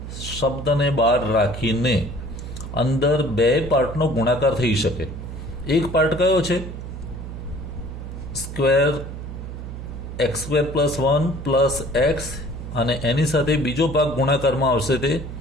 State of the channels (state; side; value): noise; right; hum, 9 dB below the sound